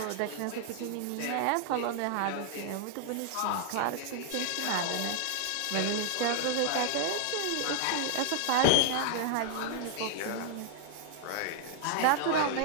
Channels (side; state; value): both; different; correlation 0.00